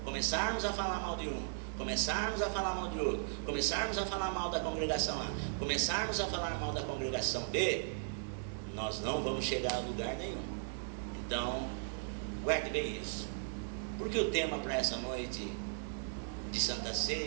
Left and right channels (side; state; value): left; silent; digital silence